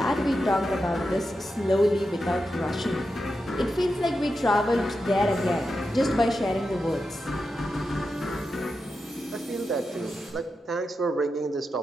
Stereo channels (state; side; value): normal; both; correlation 0.89